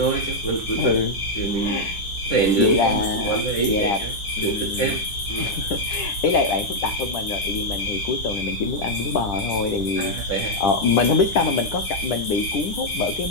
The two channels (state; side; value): late; right; 10 ms